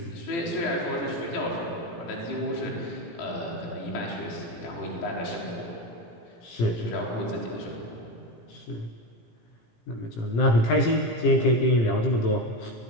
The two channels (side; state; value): right; late; 17 ms